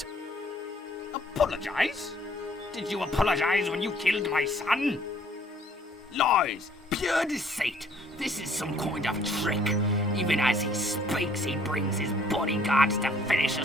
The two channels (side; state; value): both; normal; correlation 0.60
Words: Apologize? Did you apologize when you killed my son? Lies! Pure deceit! This is some kind of trick. Even as he speaks, he brings his bodyguards to finish